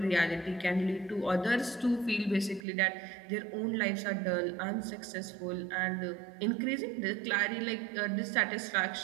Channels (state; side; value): drops out; left; at 2.7 s